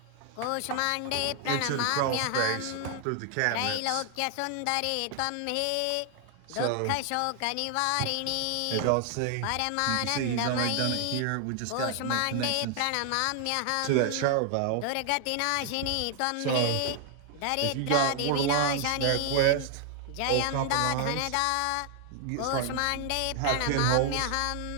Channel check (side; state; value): both; different; correlation 0.00